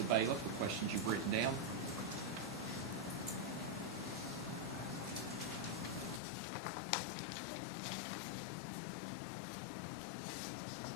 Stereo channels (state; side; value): drops out; right; at 6.2 s